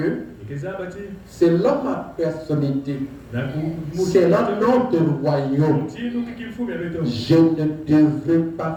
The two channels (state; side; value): identical; both; correlation 1.00